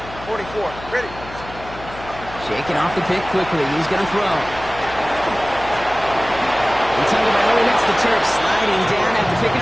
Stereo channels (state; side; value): noise; left; hum, 15 dB below the sound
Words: 44, ready. Shaking off the pick quickly. He's going to throw. And Tagovailoa hits the turf, sliding down after picking